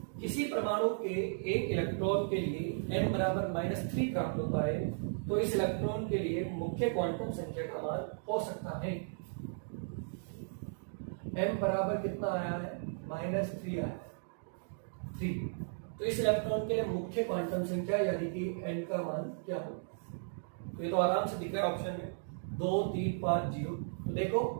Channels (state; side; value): silent; left; digital silence